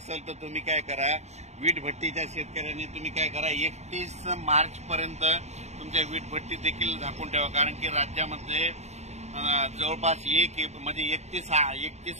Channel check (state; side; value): late; left; 0.32 ms